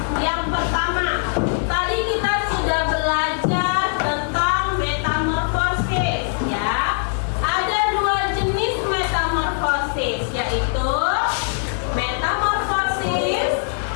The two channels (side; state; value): right; silent; digital silence